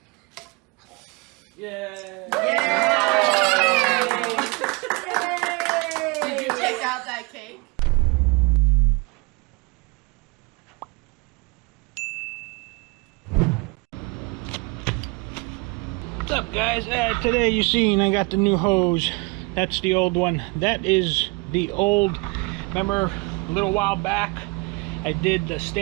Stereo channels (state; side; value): quieter; left; 27.3 dB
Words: Yay! Yay! Did you take out that cake? What's up, guys? Today you seen I got the new hose. That's the old one. That is the old. Remember a little while back I did the